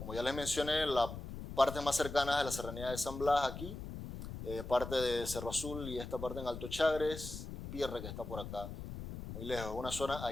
ya les mencioné, la parte más cercana es la serranía de San Blas aquí, parte de Cerro Azul y esta parte en Alto Chagres, y Pierre que está por acá, muy lejos, una zona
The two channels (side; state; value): left; noise; rumble, 9 dB below the sound